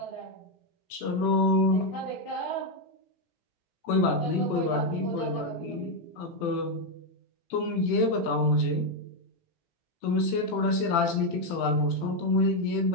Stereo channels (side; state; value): right; late; 18 ms